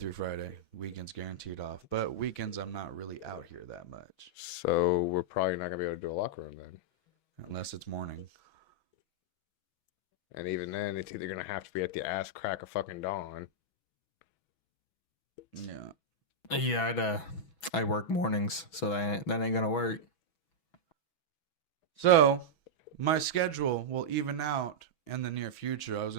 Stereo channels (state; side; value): late; right; 6.1 ms